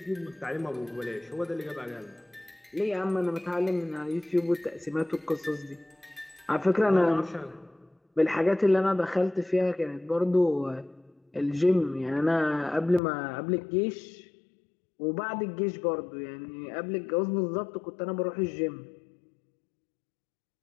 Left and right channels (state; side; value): drops out; right; at 13.0 s